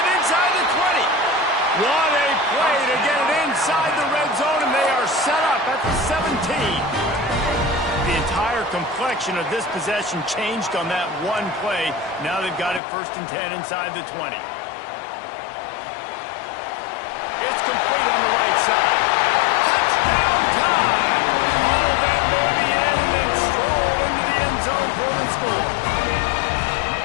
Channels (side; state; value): right; drops out; at 12.8 s